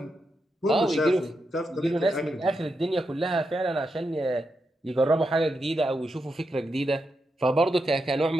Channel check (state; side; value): normal; both; correlation 0.85